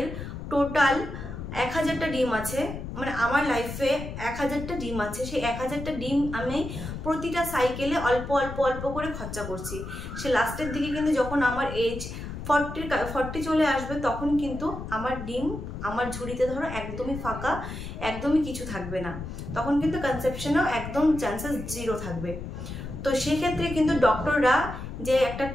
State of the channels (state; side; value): noise; left; rumble, 8 dB below the sound